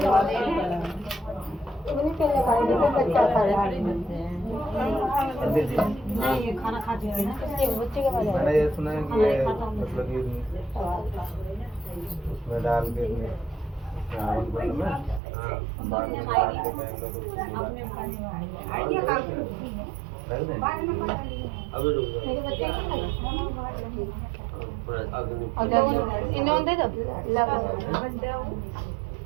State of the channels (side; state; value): left; drops out; at 15.2 s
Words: इतनी पहले खाएंगे तो बच्चा खा रहा है। ये खाना खाते हैं ना, इसके बच्चे के बाद मैंने ये सुना है कि ये मतलब कि उसमें डाल के मेरे बच्चे इन्होंने दे दो